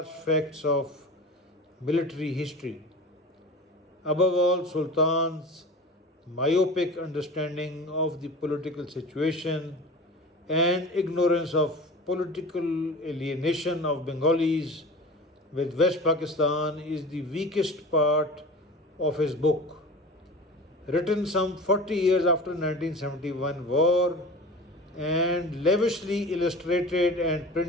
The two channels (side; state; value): both; normal; correlation 0.36